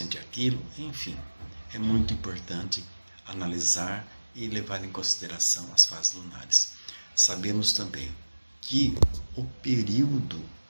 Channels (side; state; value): both; inverted; correlation -1.00